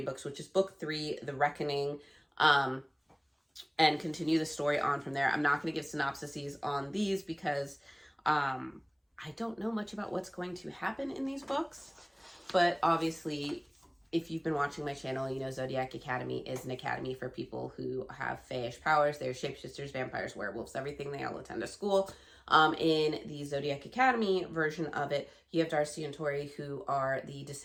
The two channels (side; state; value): both; identical; correlation 1.00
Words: books, which is book 3, The Reckoning, and continue the story on from there. I'm not going to give synopsises on these because I don't know much about what's going to happen in these books. But obviously, if you've been watching my channel, you know Zodiac Academy is an academy for people who have fayish powers. They're shapeshifters, vampires, werewolves, everything. They all attend a school. In the Zodiac Academy version of it, you have Darcy and Tori, who are the